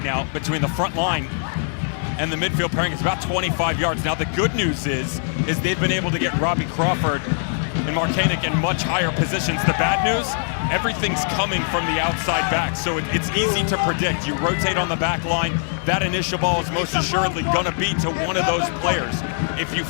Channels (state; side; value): silent; right; digital silence